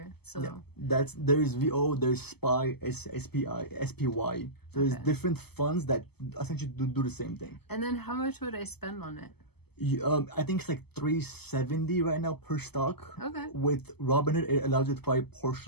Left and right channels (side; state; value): right; late; 0.97 ms